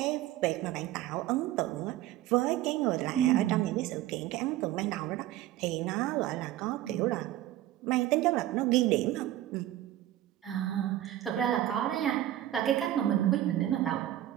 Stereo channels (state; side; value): quieter; left; 13.7 dB